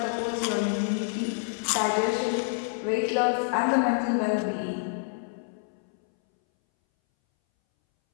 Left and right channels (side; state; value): right; silent; 60 dB below the other